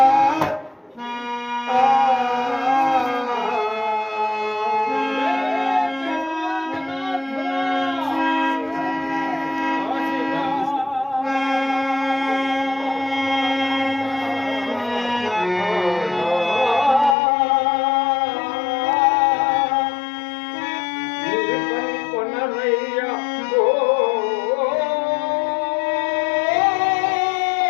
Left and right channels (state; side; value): drops out; right; at 17.2 s